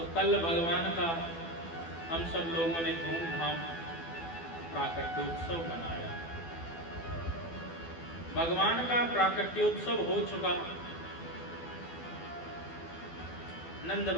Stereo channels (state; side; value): late; right; 12 ms